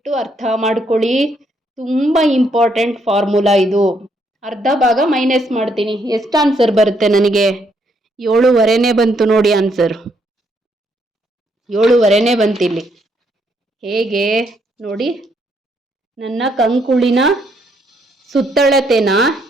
ಅರ್ಥ ಮಾಡ್ಕೊಳ್ಳಿ, ತುಂಬ ಇಂಪಾರ್ಟೆಂಟ್ ಫಾರ್ಮುಲಾ ಇದು. ಅರ್ಧ ಭಾಗ ಮೈನಸ್ ಮಾಡ್ತೀನಿ, ಎಷ್ಟು ಆನ್ಸರ್ ಬರುತ್ತೆ ನನಗೆ, 7.5ನೇ ಬಂತು ನೋಡಿ ಆನ್ಸರ್. 7.5ನೇ ಬಂತಿಲ್ಲಿ. ಹೇಗೆ ನೋಡಿ, ನನ್ನ ಕಂಕುಳಿನ ಸುತ್ತಳತೆನ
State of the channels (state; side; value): normal; both; correlation 0.73